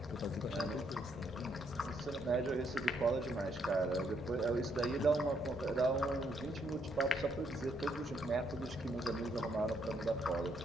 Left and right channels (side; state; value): both; normal; correlation 0.73